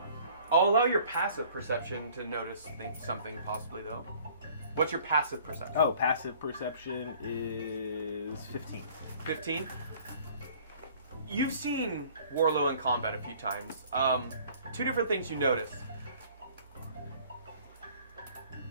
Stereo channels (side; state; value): both; inverted; correlation -0.53